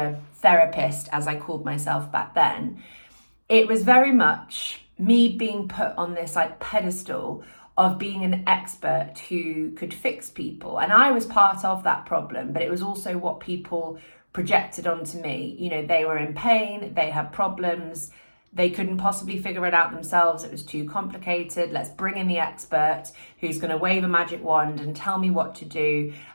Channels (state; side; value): inverted; both; correlation -1.00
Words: therapist, as I called myself back then, it was very much me being put on this like pedestal of being an expert who could fix people. And I was part of that problem, but it was also what people projected onto me. They were in pain, they had problems, they couldn't possibly figure it out themselves. It was too complicated. Let's bring in the expert who's going to wave a magic wand and tell me what to do.